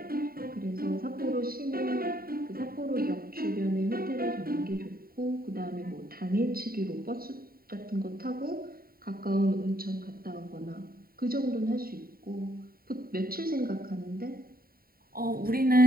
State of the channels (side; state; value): left; late; 0.43 ms